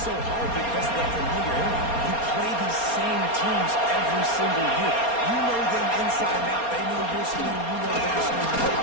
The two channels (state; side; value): late; right; 4.3 ms